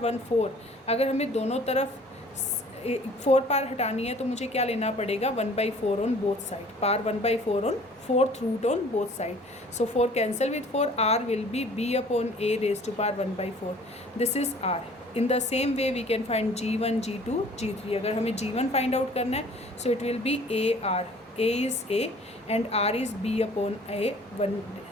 1 4. अगर हमें दोनों तरफ 4 पार हटानी है तो मुझे क्या लेना पड़ेगा? 1/4 on both side. Power 1/4 on fourth root on both side. So 4 cancel with 4. R will be B upon A raise to power 1/4. This is R. In the same way we can find G1 G2 G3. अगर हमें G1 find out करना है so it will be AR. A is A and R is B upon A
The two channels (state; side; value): normal; both; correlation 0.51